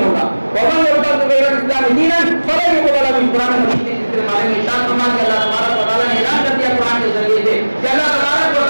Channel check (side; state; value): both; inverted; correlation -1.00